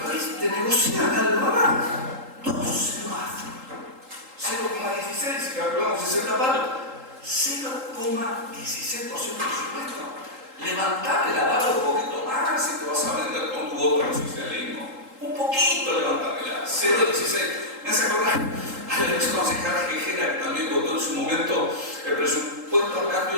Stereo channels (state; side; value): late; left; 3.8 ms